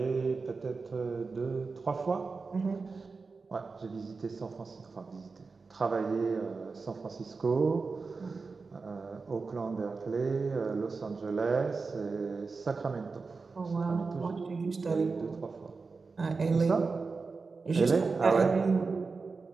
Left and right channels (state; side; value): quieter; left; 4.4 dB